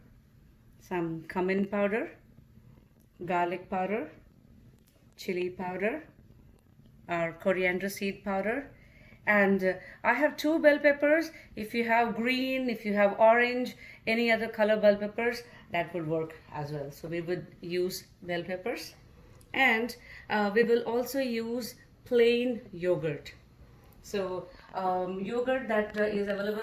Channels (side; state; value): both; identical; correlation 1.00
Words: some cumin powder, garlic powder, chilli powder, our coriander seed powder, and I have 2 bell peppers. If you have green, if you have orange, any other color bell peppers, that would work as well. So we would use bell peppers, and we will also use plain yogurt. So yogurt that is